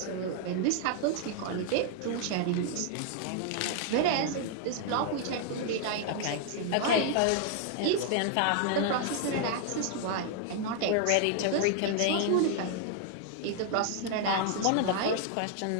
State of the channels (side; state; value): both; different; correlation 0.00